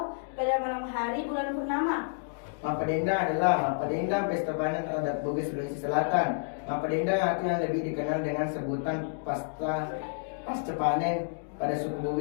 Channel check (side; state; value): right; silent; digital silence